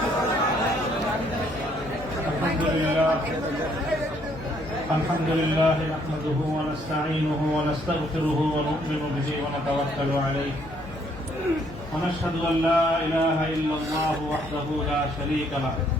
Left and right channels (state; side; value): noise; left; hum, 18 dB below the sound